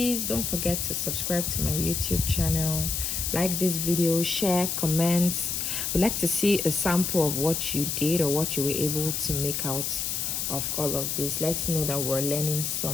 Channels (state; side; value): noise; left; hiss, 1 dB below the sound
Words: don't forget to subscribe to my YouTube channel, like this video, share, comment. We'd like to see a sample of what you did or what you were able to make out of all of this. Let's know that we're learning